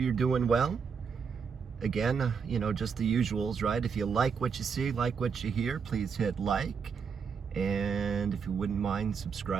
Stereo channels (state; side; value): quieter; left; 6.2 dB